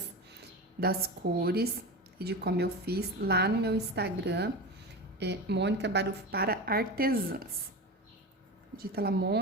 das cores e de como eu fiz lá no meu Instagram, Mônica Barufo para artesãs. Digita lá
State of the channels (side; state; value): both; normal; correlation 0.26